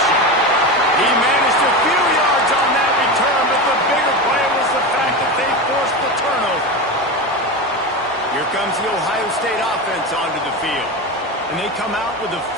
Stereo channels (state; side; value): normal; both; correlation 0.22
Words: He managed a few yards on that return, but the bigger play was the fact that they forced the turnover. Here comes the Ohio State offense onto the field. And they come out with a